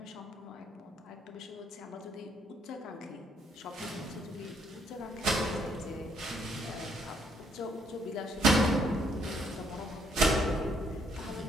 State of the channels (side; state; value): both; normal; correlation 0.70